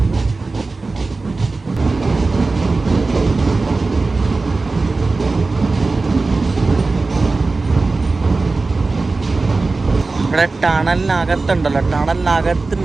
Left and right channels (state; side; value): quieter; left; 3.7 dB